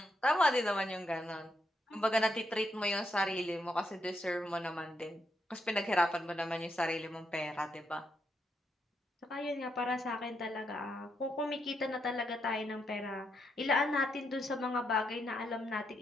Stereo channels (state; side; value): normal; both; correlation 0.80